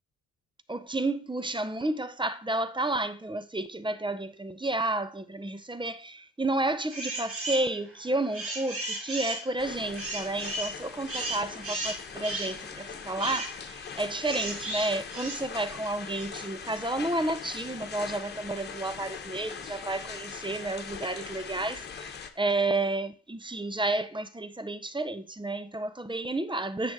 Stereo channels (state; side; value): normal; both; correlation 0.51